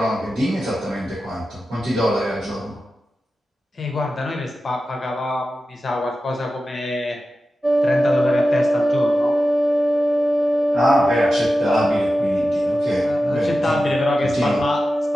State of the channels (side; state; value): both; normal; correlation 0.93